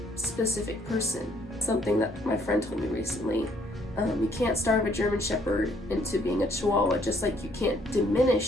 specific person. Something that my friend told me recently. You can't starve a German Shepherd into being a Chihuahua, just like you can't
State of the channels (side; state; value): both; normal; correlation 0.65